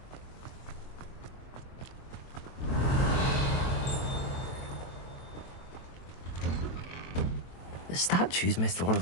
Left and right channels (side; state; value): right; late; 23 ms